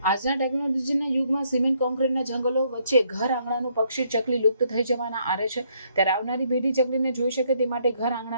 આજના ટેકનોલોજીના યુગમાં સિમેન્ટ કોન્ક્રીટના જંગલો વચ્ચે ઘર આંગણાનું પક્ષી ચકલી લુપ્ત થઈ જવાના આરે છે. ત્યારે આવનારી પેઢી ચકલીને જોઈ શકે તે માટે ઘર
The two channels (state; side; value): inverted; both; correlation -0.70